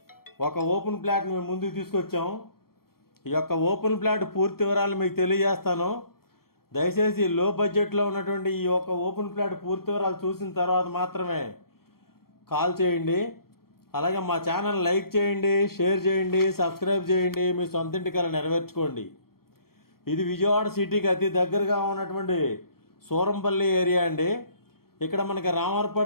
ఒక ఓపెన్ ప్లాట్ మేము ముందుకు తీసుకొచ్చాం. ఈ యొక్క ఓపెన్ ప్లాట్ పూర్తి వివరాలు మీకు తెలియజేస్తాను. దయచేసి లో బడ్జెట్లో ఉన్నటువంటి ఈ యొక్క ఓపెన్ ప్లాట్ పూర్తి వివరాలు చూసిన తర్వాత మాత్రమే కాల్ చేయండి. అలాగే మా ఛానల్ లైక్ చేయండి, షేర్ చేయండి, సబ్స్క్రైబ్ చేయండి. మీ సొంత ఇంటికల నెరవేర్చుకోండి. ఇది విజయవాడ సిటీకి అతి దగ్గరగా ఉన్నటువంటి సూరంపల్లి ఏరియా అండి. ఇక్కడ మనకి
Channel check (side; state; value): right; late; 0.94 ms